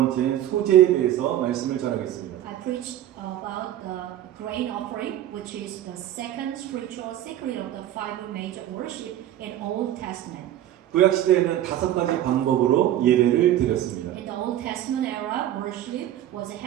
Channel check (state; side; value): quieter; left; 12.3 dB